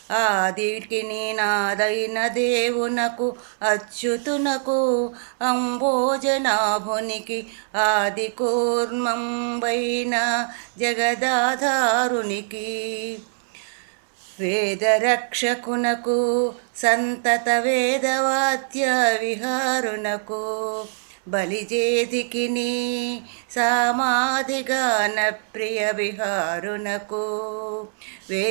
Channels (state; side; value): silent; left; 63 dB below the other